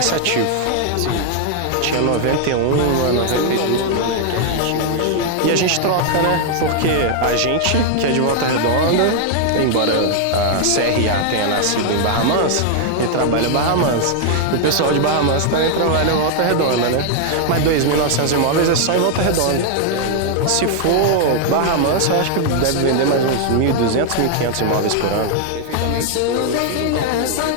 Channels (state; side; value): different; both; correlation 0.00